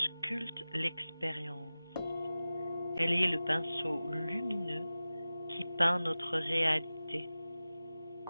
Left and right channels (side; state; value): both; inverted; correlation -0.96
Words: sculpte l'expérience. Elle est le pinceau lumineux qui peint notre réalité.